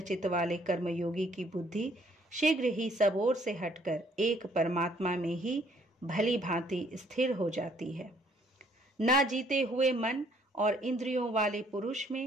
वाले कर्मयोगी की बुद्धि शीघ्र ही सब ओर से हटकर एक परमात्मा में ही भली भांति स्थिर हो जाती है। न जीते हुए मन और इंद्रियों वाले पुरुष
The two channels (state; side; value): normal; both; correlation 0.64